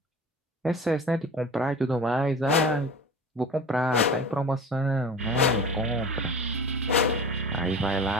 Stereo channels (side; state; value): both; normal; correlation 0.38